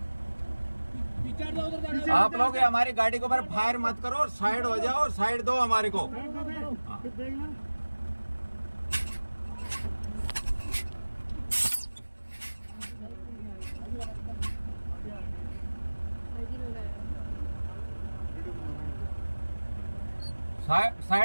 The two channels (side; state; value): both; inverted; correlation -1.00